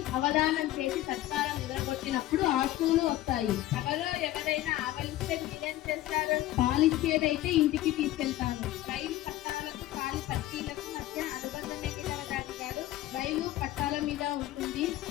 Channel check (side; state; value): right; quieter; 15.0 dB